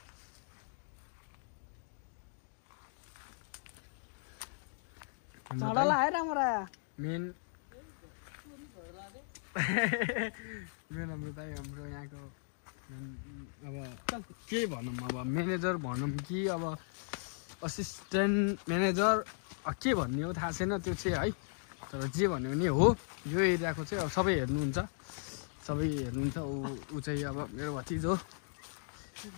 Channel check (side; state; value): right; silent; digital silence